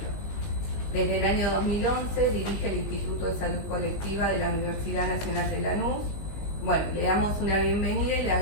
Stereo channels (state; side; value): late; right; 20 ms